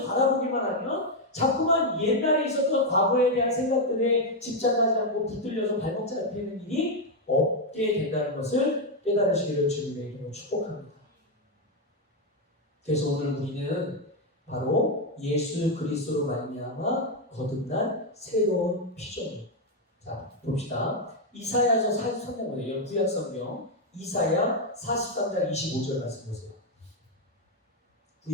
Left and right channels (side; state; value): both; normal; correlation 0.03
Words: 바라보기만 하면 자꾸만 옛날에 있었던 과거에 대한 생각들에 집착하지 않고 붙들려서 발목 잡히는 일이 없게 된다는 것을 깨달으시기를 주님의 이름으로 축복합니다. 그래서 오늘 우리는 바로 예수 그리스도로 말미암아 거듭난 새로운 피조물. 자, 봅시다. 이사야서 43장이에요. 구약성경 이사야 43장 25절 말씀 보세요.